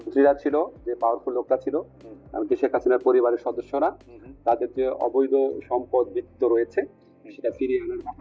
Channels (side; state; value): both; identical; correlation 1.00